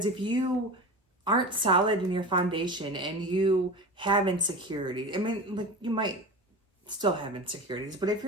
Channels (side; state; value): both; normal; correlation 0.30